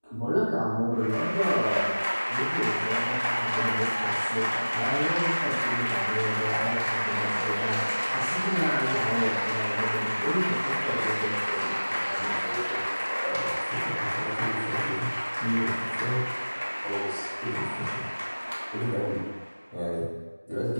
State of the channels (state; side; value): inverted; both; correlation -1.00